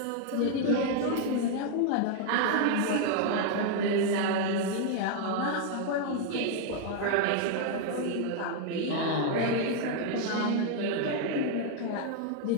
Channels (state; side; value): different; both; correlation 0.00